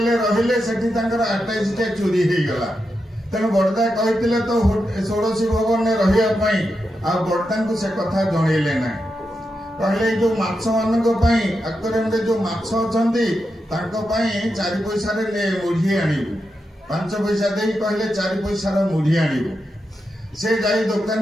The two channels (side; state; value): both; normal; correlation 0.87